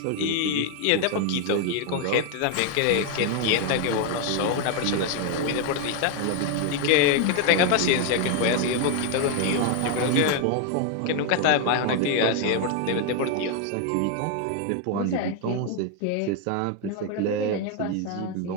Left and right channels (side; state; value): both; different; correlation 0.01